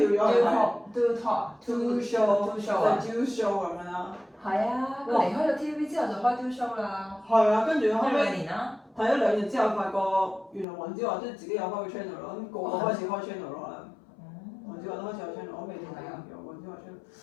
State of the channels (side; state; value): right; drops out; at 10.7 s